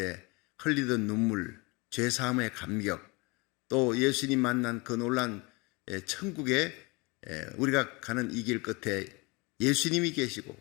흘리던 눈물, 죄사함의 감격, 또 예수님 만난 그 놀란 천국에 우리가 가는 이 길 끝에 예수님이 계시고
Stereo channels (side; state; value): right; quieter; 26.8 dB